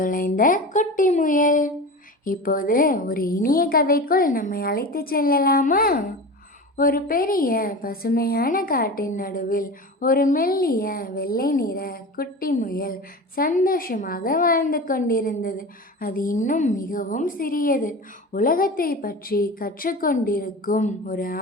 குட்டி முயல். இப்போது ஒரு இனிய கதைக்குள் நம்மை அழைத்து செல்லலாமா? ஒரு பெரிய பசுமையான காட்டின் நடுவில் ஒரு மெல்லிய வெள்ளை நிற குட்டி முயல் சந்தோஷமாக வாழ்ந்து கொண்டிருந்தது. அது இன்னும் மிகவும் சிறியது. உலகத்தை பற்றி கற்றுக்கொண்டிருக்கும் ஒரு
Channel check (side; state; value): both; normal; correlation 0.31